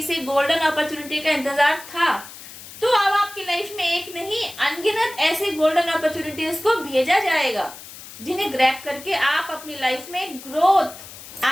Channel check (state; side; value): noise; left; hiss, 15 dB below the sound